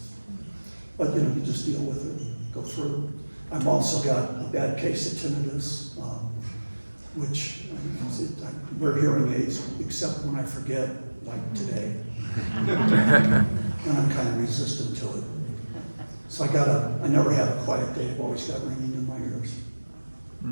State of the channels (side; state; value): both; inverted; correlation -1.00